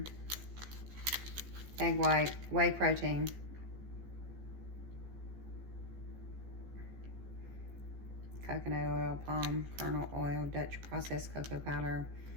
Egg white, whey protein. Coconut oil, palm kernel oil, Dutch processed cocoa powder,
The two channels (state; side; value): late; left; 14 ms